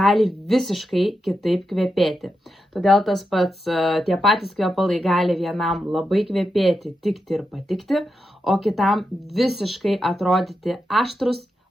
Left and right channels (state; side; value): normal; both; correlation 0.87